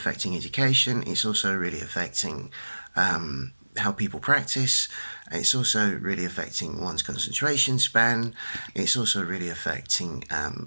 education. It's also really affecting how people practice. It's also really affecting one's concentration span. It's also really affecting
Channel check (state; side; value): inverted; both; correlation -1.00